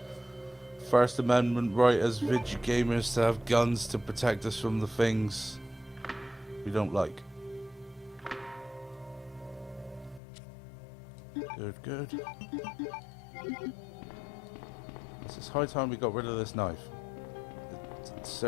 First Amendment right as video gamers to have guns to protect us from the things we don't like. Good. It's high time we got rid of this knife. It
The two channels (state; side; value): drops out; right; at 10.2 s